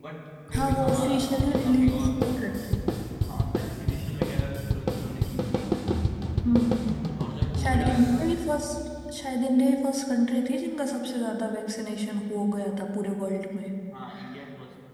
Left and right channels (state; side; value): identical; both; correlation 1.00